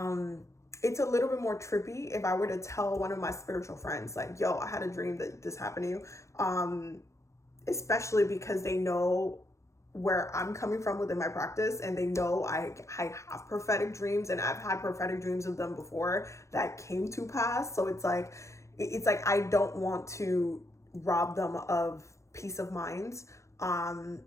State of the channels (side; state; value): right; late; 0.14 ms